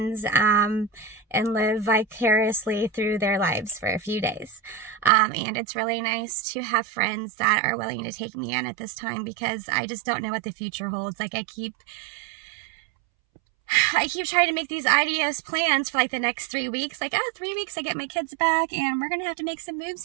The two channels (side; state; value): left; drops out; at 5.1 s